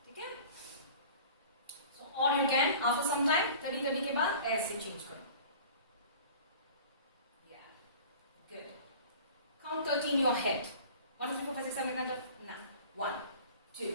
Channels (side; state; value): both; inverted; correlation -0.43